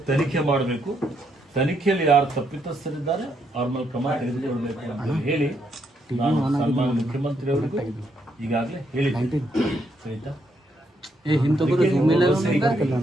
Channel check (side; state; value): both; normal; correlation 0.76